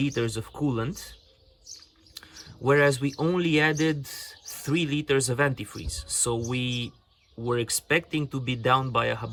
of coolant, whereas we only added 3 liters of antifreeze. So we were expecting to be down by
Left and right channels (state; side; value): identical; both; correlation 1.00